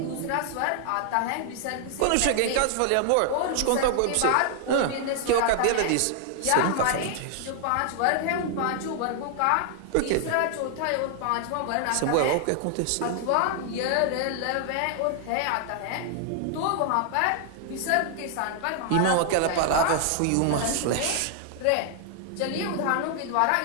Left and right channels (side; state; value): both; different; correlation 0.00